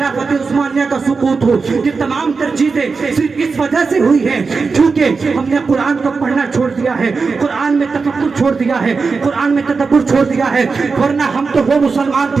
عثمانیہ کا سقوط ہو، یہ تمام تر چیزیں صرف اس وجہ سے ہوئی ہیں کیونکہ ہم نے قرآن کو پڑھنا چھوڑ دیا ہے، قرآن میں تفکر چھوڑ دیا ہے، قرآن میں تدبر چھوڑ دیا ہے. ورنہ ہم تو وہ مسلمان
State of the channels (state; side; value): quieter; left; 4.7 dB